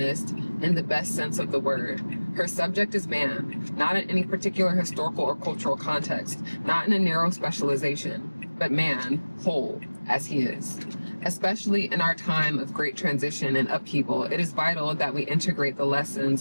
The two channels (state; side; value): inverted; both; correlation -1.00